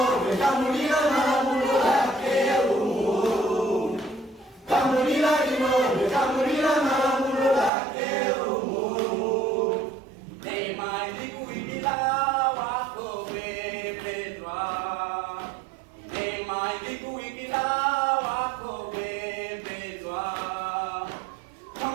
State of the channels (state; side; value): drops out; left; at 7.7 s